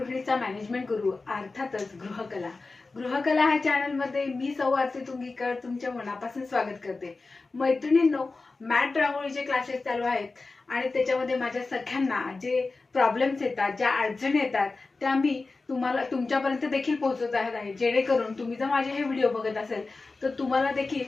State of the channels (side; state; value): right; quieter; 3.7 dB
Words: मॅनेजमेंट गुरु अर्थातच गृहकला ह्या चॅनलमध्ये मी सौ आरती तुंगीकर तुमच्या मनापासून स्वागत करते. मैत्रिणींनो, मॅट रांगोळीचे क्लासेस चालू आहेत आणि त्याच्यामध्ये माझ्या सख्यांना जे प्रॉब्लेम्स येतात, ज्या अडचणी येतात त्या मी तुम्हाला तुमच्यापर्यंत देखील पोहोचवत आहे, जेणेकरून तुम्ही जर माझे हे व्हिडिओ बघत असेल तर तुम्हाला देखील